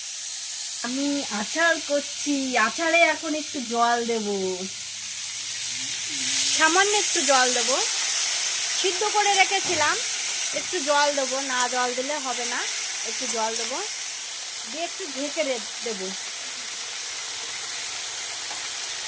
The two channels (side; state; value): both; identical; correlation 1.00